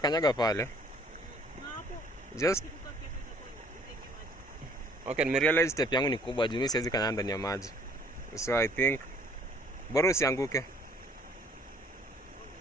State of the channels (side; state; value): both; normal; correlation 0.58